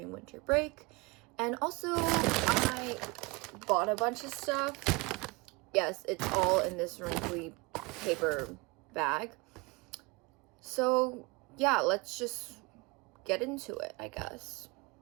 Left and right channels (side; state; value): left; quieter; 26.0 dB